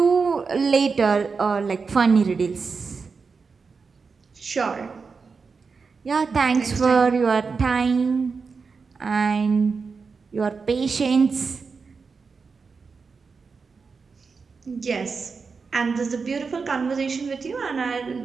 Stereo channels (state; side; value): quieter; left; 5.0 dB